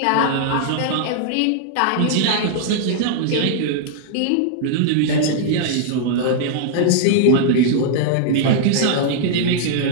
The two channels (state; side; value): different; both; correlation -0.01